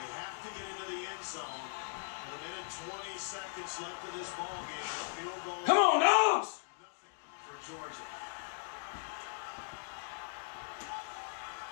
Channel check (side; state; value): right; silent; digital silence